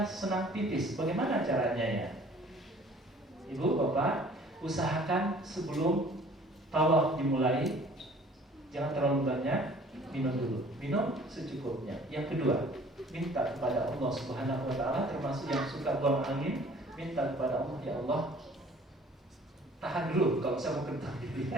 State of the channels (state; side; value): normal; both; correlation 0.52